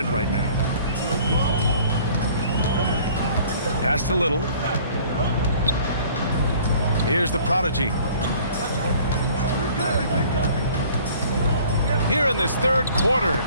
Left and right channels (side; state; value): both; inverted; correlation -0.52